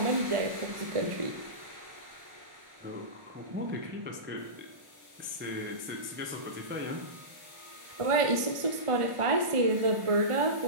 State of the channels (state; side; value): late; left; 1.4 ms